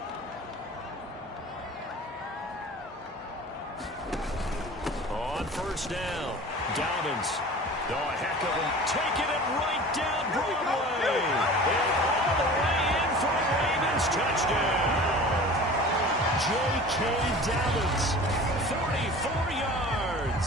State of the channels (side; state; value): both; normal; correlation 0.40